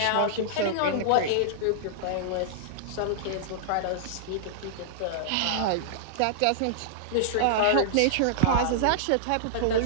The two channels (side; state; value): both; different; correlation -0.01